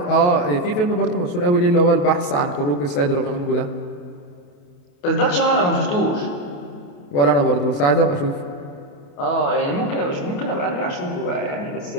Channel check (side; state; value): right; late; 28 ms